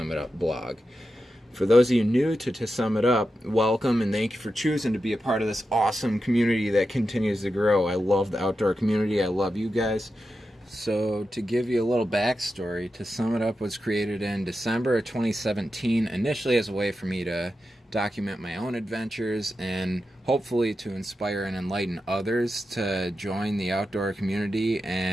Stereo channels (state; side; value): normal; both; correlation 0.90